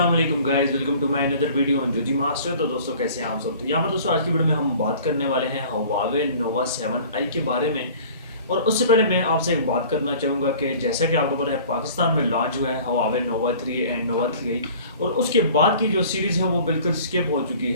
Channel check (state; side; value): inverted; both; correlation -0.47